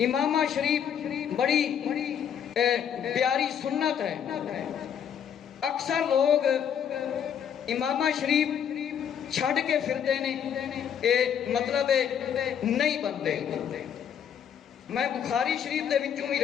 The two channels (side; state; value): right; quieter; 8.6 dB